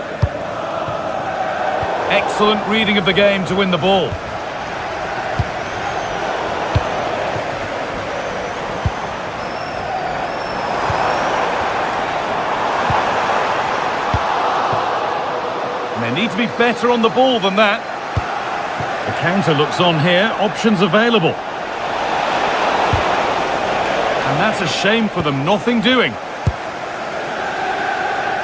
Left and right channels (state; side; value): identical; both; correlation 1.00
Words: Excellent reading of the game to win the ball. They need to be better on the ball than that. The counter looks on here, options available. And that's a shame for them, nothing doing.